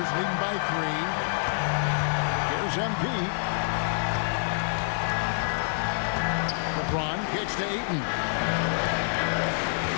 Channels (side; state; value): right; silent; digital silence